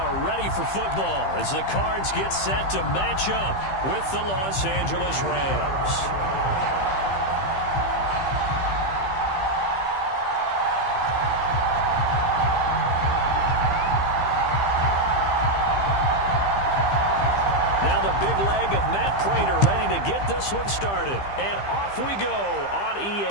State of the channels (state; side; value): late; right; 15 ms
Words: ready for football as the Cards get set to match up with the Los Angeles Rams. Now the big leg of Matt Prater ready to get this one started. And off we go on